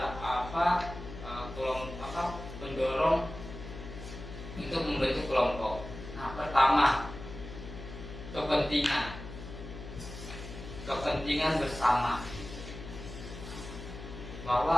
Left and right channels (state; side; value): noise; left; hum, 11 dB below the sound